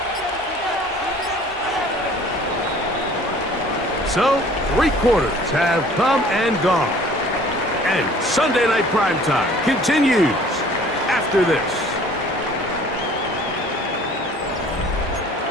So, 3 quarters have come and gone. And Sunday Night Primetime continues after this.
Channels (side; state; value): both; normal; correlation 0.51